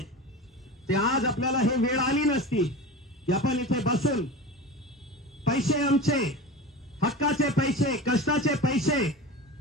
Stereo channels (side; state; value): both; normal; correlation 0.31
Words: ते आज आपल्याला हे वेळ आली नसती की आपण इथे बसून पैसे आमचे, हक्काचे पैसे, कष्टाचे पैसे,